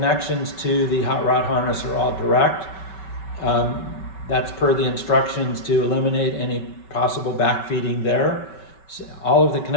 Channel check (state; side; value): late; right; 5.3 ms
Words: to the hot rod harness are all direct. That's per the instructions to eliminate any possible backfeeding there. So all of the